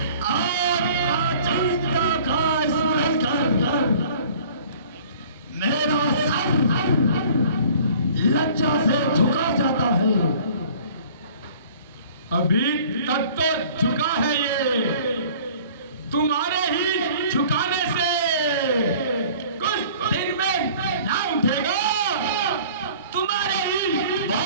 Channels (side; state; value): both; inverted; correlation -0.50